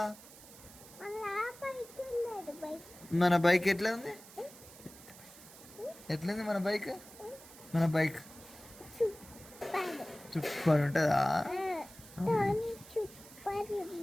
మన బైక్ ఎట్లా ఉంది? ఎట్లుంది మన బైక్? మన బైక్ సూపర్ ఉంటుందా?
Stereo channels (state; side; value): noise; right; hiss, 19 dB below the sound